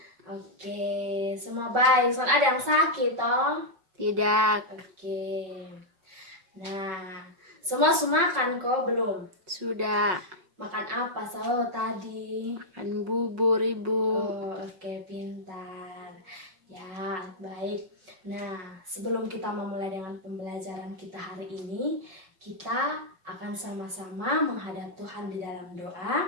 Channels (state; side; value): late; left; 5.3 ms